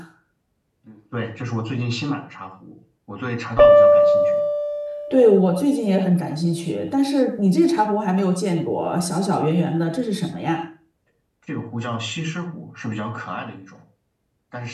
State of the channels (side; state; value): both; identical; correlation 1.00